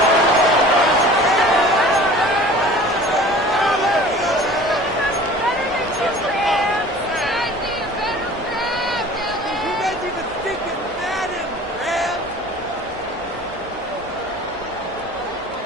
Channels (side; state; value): right; noise; hum, 26 dB below the sound